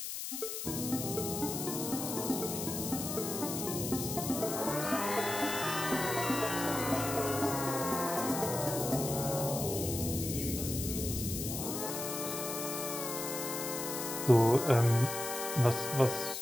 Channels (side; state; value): left; noise; hiss, 5 dB below the sound